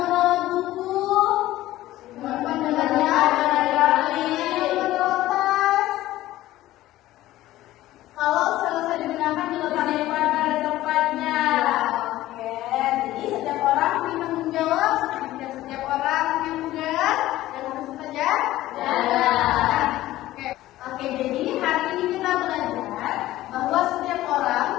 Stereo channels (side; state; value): right; quieter; 15.6 dB